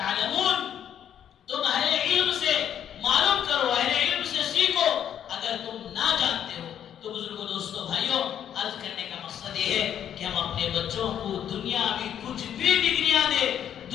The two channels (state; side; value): quieter; right; 9.6 dB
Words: تم اہل علم سے معلوم کرو، اہل علم سے سیکھو اگر تم نہ جانتے ہو. تو بزرگوں، دوستوں، بھائیوں، عرض کرنے کا مقصد یہ ہے کہ ہم اپنے بچوں کو دنیاوی کچھ بھی ڈگریاں دیں،